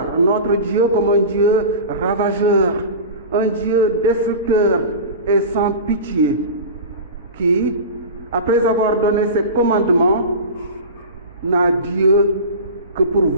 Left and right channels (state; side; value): inverted; both; correlation -0.30